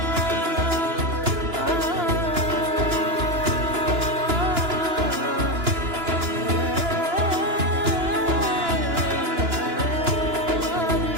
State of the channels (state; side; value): late; left; 2.9 ms